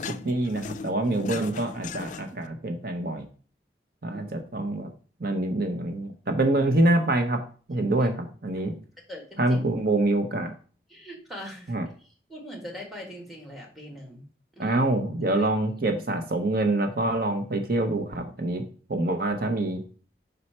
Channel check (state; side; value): normal; both; correlation 0.55